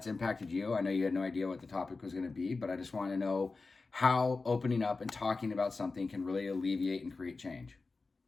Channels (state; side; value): quieter; right; 3.9 dB